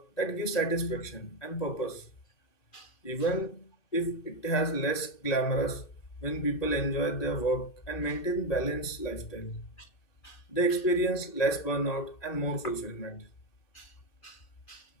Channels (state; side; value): late; right; 2.6 ms